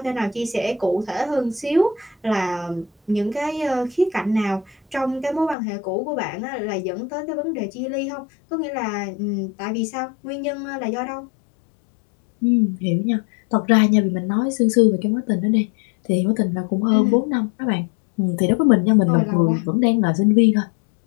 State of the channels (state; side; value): drops out; right; at 5.6 s